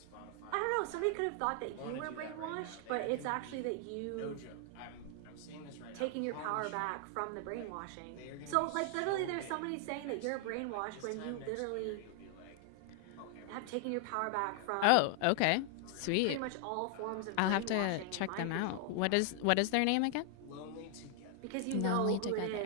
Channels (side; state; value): both; different; correlation 0.00